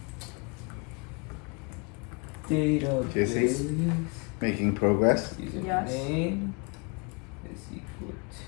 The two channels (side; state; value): right; quieter; 32.0 dB